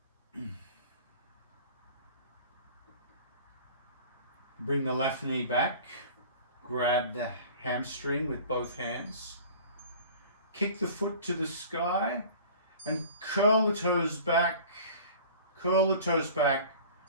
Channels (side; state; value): both; inverted; correlation -0.44